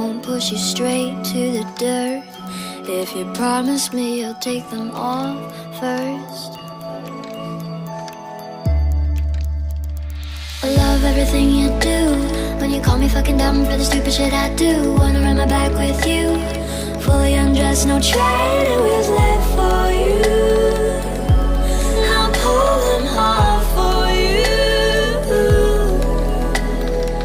push you straight to the dirt. If you promise me you'll take them off first. I love everything you do. When you call me fucking dumb for the stupid shit I do. Wanna run my back with you, fully undressed, no training wheels left for you. I'll pull them off for you.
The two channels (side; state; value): both; identical; correlation 1.00